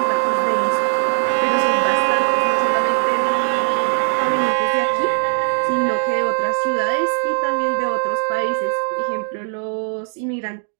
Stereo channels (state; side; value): silent; left; 66 dB below the other